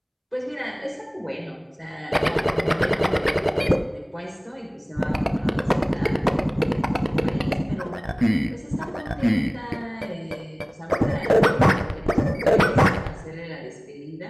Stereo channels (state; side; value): identical; both; correlation 1.00